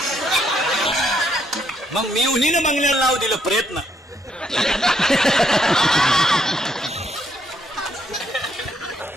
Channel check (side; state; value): both; normal; correlation 0.72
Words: मग मी उन्हीला बंगल्याला नाव दिलं प्रयत्न.